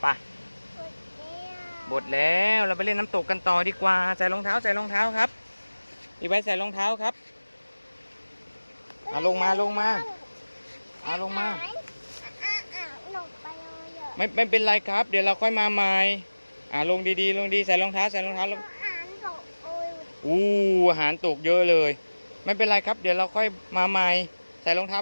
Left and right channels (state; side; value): inverted; both; correlation -1.00